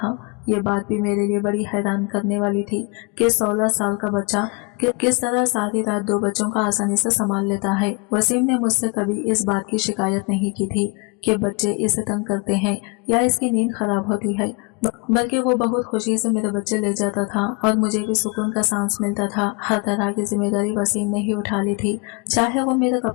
ये बात भी मेरे लिए बड़ी हैरान करने वाली थी कि 16 साल का बच्चा किस तरह सारी रात 2 बच्चों का आसानी से संभाल लेता है। वसीम ने मुझसे कभी इस बात की शिकायत नहीं की थी कि बच्चे इसे तंग करते हैं या इसकी नींद खराब होती है, बल्कि वो बहुत खुशी से मेरे बच्चे ले जाता था और मुझे भी सुकून का सांस मिलता था। हर तरह की जिम्मेदारी वसीम ने ही उठा ली थी, चाहे वो मेरे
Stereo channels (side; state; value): right; quieter; 31.2 dB